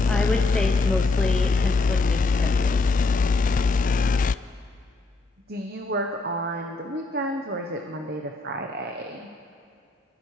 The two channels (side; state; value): right; quieter; 3.4 dB